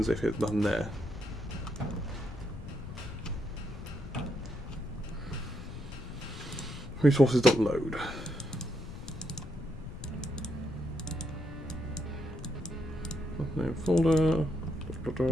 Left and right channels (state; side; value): noise; left; rumble, 10 dB below the sound